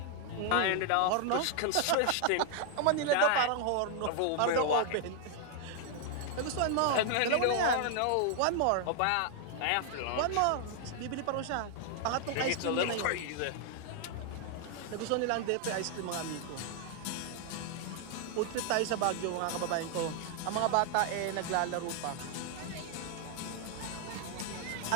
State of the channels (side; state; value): both; different; correlation 0.00